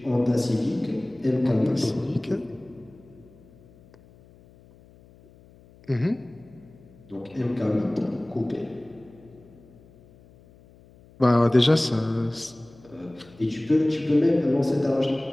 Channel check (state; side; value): noise; left; hum, 26 dB below the sound